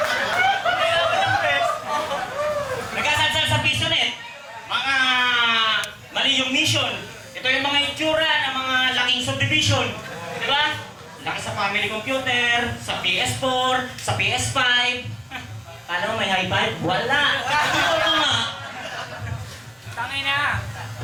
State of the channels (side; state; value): both; identical; correlation 1.00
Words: Nagsasalsal sa piso net. Mga mali yung mission. Ito yung mga itsura ng mga laking subdivision. Di ba? Laki sa family computer, sa PS4, sa PS5. Kala mo may high five? Wala! Ito nga. Tangina.